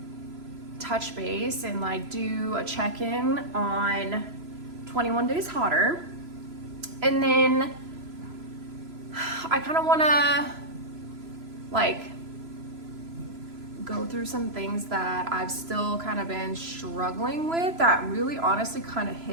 touch base and like do a check-in on 21 Days Hotter. And then I kind of want to like go through some things that I've still kind of been struggling with that really honestly kind of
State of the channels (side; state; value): left; late; 3.0 ms